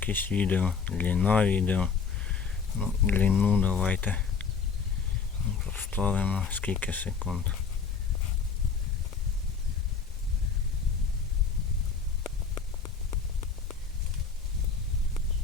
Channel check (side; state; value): right; quieter; 5.6 dB